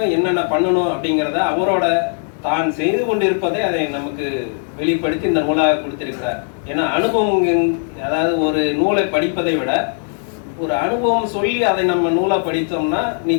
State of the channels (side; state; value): right; silent; 56 dB below the other